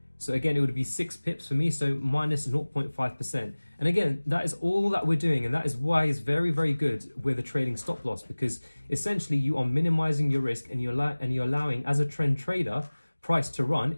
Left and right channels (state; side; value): inverted; both; correlation -1.00